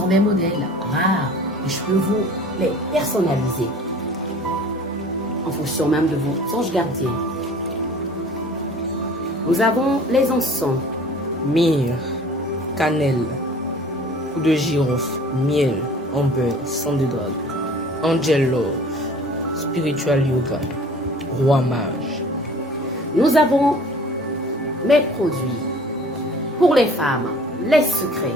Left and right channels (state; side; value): normal; both; correlation 0.48